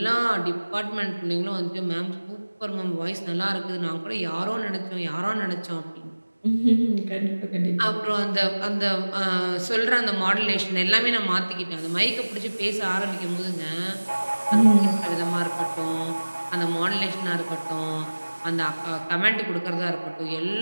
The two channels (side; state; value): both; inverted; correlation -1.00